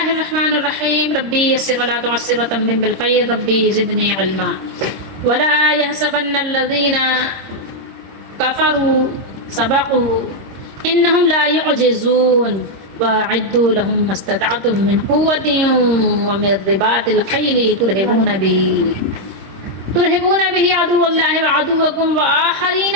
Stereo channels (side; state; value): left; late; 26 ms